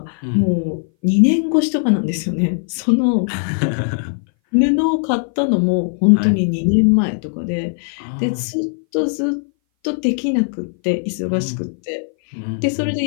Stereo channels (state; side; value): silent; right; 60 dB below the other